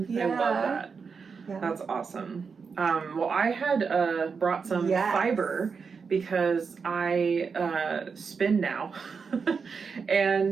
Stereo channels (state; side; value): quieter; left; 5.5 dB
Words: Yeah. I love that. Yeah. That's awesome. Well, I had brought some fiber because I spin now.